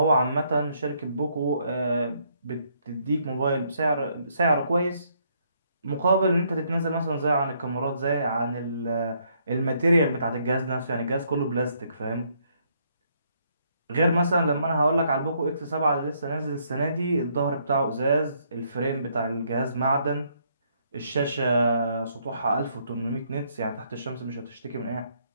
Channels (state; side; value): inverted; both; correlation -0.71